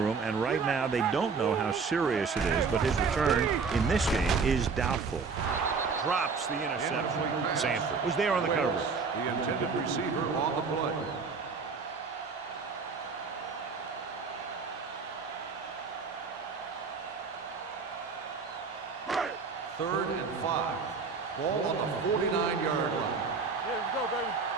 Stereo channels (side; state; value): left; quieter; 5.0 dB